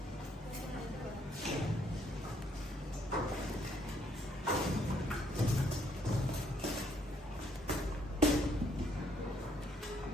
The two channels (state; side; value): normal; both; correlation 0.69